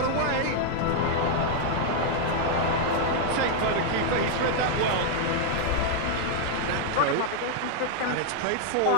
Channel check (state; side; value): different; both; correlation 0.00